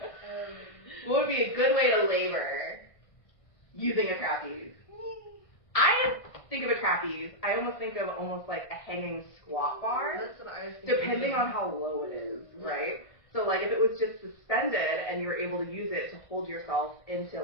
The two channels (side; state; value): right; late; 1.5 ms